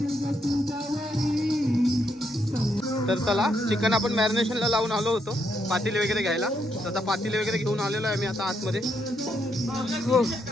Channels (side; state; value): both; normal; correlation 0.77